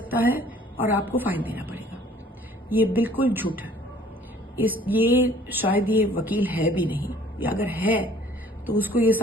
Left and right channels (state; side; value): normal; both; correlation 0.55